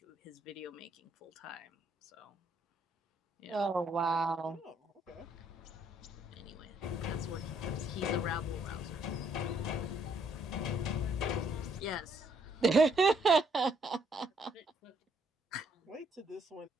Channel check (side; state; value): both; normal; correlation 0.69